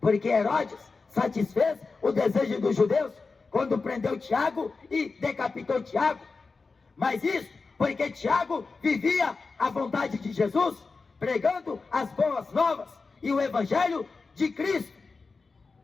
Herodes satisfez o desejo dos judeus quando prendeu Tiago e decapitou Tiago. Mas isso porque Tiago vivia a vontade de Jesus, pregando as boas novas e o evangelho de Cristo.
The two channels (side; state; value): right; quieter; 4.2 dB